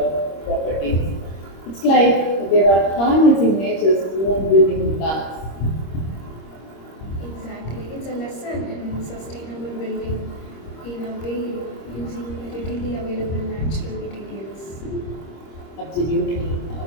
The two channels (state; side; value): late; right; 26 ms